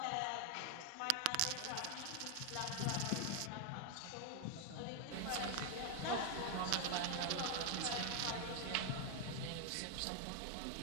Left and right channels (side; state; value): both; different; correlation 0.00